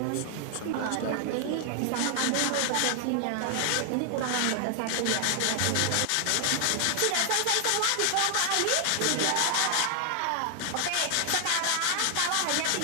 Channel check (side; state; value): both; different; correlation 0.00